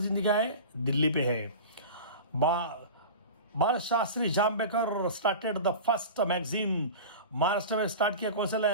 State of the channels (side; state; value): both; inverted; correlation -0.32